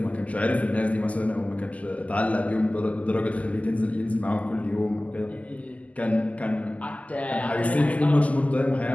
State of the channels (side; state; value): right; late; 0.071 ms